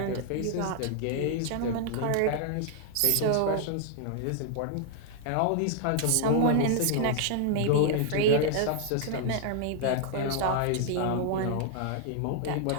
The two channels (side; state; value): both; different; correlation 0.00